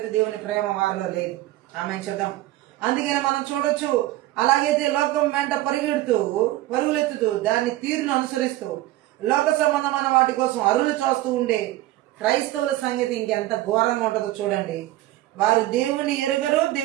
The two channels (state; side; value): quieter; left; 16.3 dB